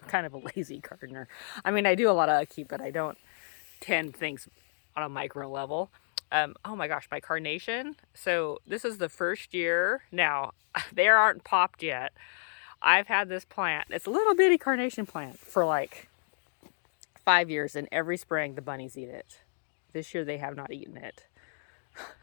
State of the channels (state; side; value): silent; right; digital silence